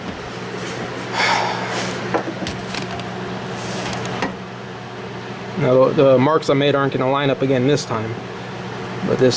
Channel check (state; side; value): identical; both; correlation 1.00